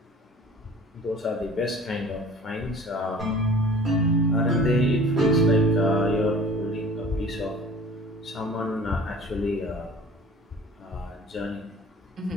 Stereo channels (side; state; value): both; normal; correlation 0.45